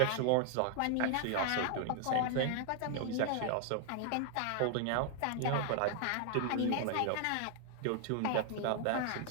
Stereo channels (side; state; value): both; different; correlation 0.00